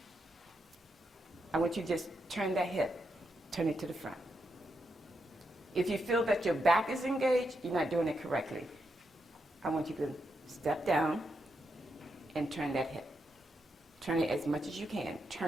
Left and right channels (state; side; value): normal; both; correlation 0.83